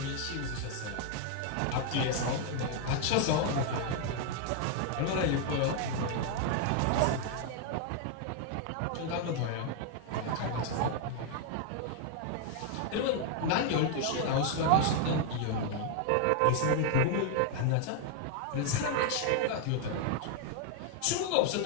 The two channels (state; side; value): different; both; correlation 0.00